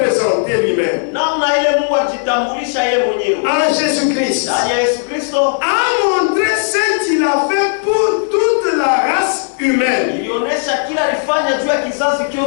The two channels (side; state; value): right; silent; 67 dB below the other